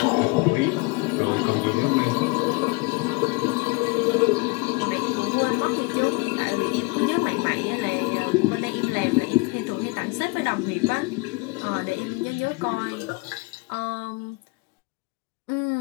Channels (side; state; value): right; quieter; 27.2 dB